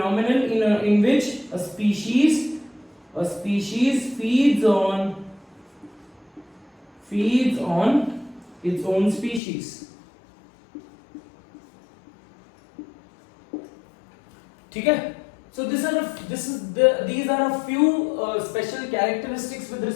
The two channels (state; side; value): drops out; right; at 9.4 s